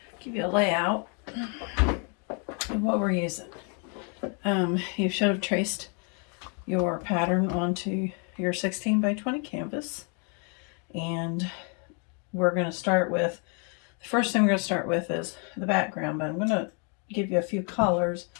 give you a layout of what we're using. You should have traced your pattern onto your 16 by 20 canvas. And we're going to start with, the first thing we're going to start with is the background, but I'm going to give you a few colors.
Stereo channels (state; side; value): quieter; right; 37.8 dB